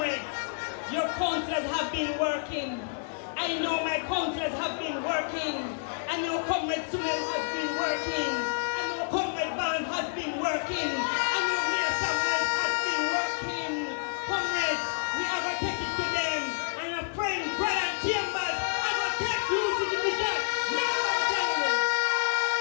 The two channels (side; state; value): right; silent; digital silence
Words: your councillors have been working. I know my councillors have been working. I know Comrade Sumel has been working. I know Comrade Barnes has been working. I know Mayor Samuel has been working. Comrades, we are going to take it to them. And your friend Brian Chambers are going to take you to the vision.